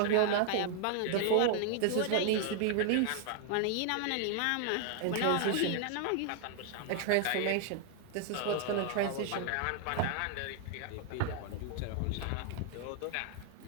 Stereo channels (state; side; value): different; both; correlation 0.00